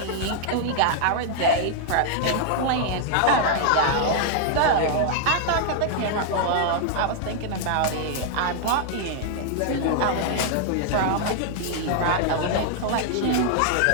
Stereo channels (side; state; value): both; different; correlation -0.01